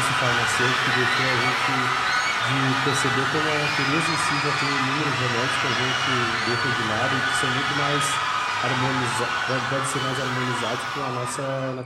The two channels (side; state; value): both; identical; correlation 1.00